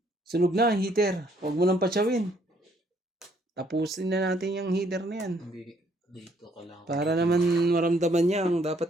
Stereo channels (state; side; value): normal; both; correlation 0.67